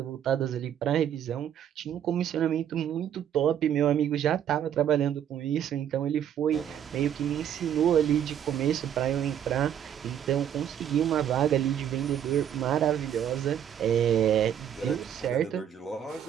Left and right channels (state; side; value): quieter; left; 9.6 dB